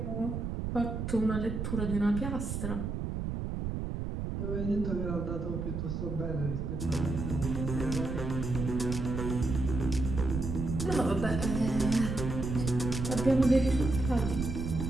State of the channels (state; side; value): noise; right; rumble, 3 dB below the sound